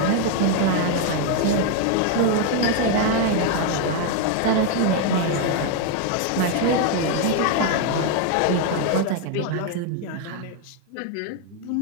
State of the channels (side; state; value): both; different; correlation 0.01